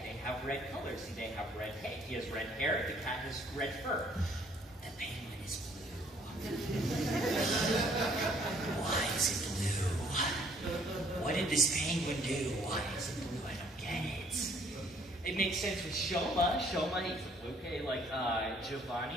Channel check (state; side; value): normal; both; correlation 0.62